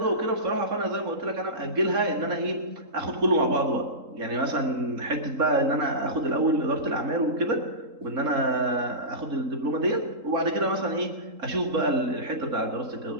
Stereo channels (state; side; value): late; left; 3.8 ms